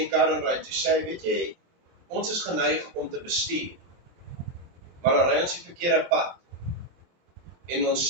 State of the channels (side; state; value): left; late; 23 ms